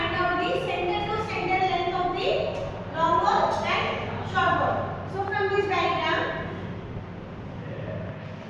out the center to center length of the long wall and short wall. So from this diagram,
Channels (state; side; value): identical; both; correlation 1.00